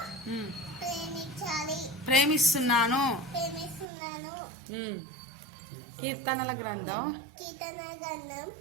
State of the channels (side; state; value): left; drops out; at 3.9 s